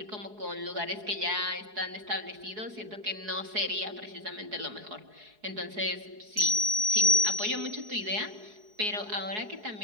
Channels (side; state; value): left; late; 4.7 ms